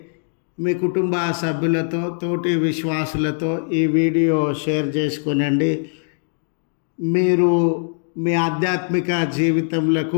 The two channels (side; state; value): right; silent; digital silence